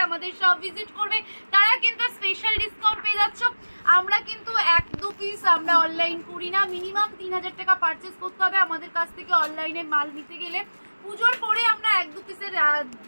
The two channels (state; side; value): inverted; both; correlation -1.00